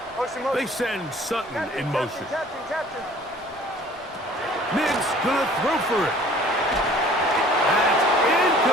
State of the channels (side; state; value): both; normal; correlation 0.52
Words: They send Sutton in motion. Captain. Nix gonna throw for it. That's